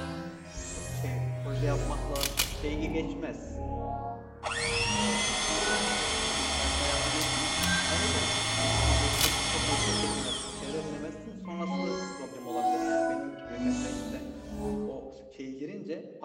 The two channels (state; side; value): identical; both; correlation 1.00